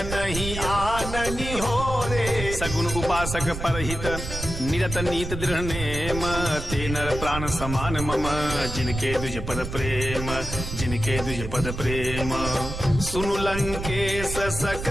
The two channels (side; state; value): right; noise; rumble, 7 dB below the sound